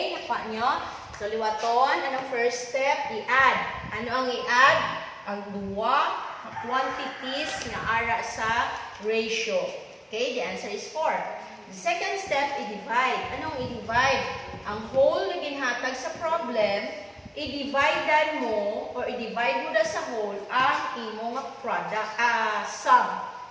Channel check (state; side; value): identical; both; correlation 1.00